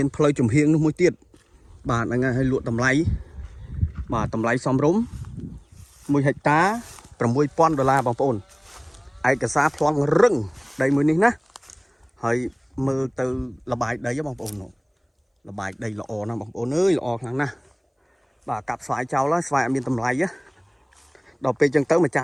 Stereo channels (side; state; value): both; identical; correlation 1.00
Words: ន ផ្លូវ ចំហៀង នោះ មួយ ទៀត បាទ ហ្នឹង ហើយ លក់ តម្លៃ បាទ តម្លៃ សមរម្យ 1 ហិកតា $6,000 បងប្អូន ឯកសារ ប្លន់ រឹង ដី មួយ នេះ ណា ហើយ មើល ទៅ លបាយ ដី បងប្អូន លបាយ ដី ល្អ ណាស់ បងប្អូន អើយ ល្អ ខ្លាំង ណាស់ បាទ កាប់ ស្វាយ ចោល ហើយ ស្វាយ អត់ មាន តម្លៃ ដល់ ពេល ចឹង ទៅ ម្ចាស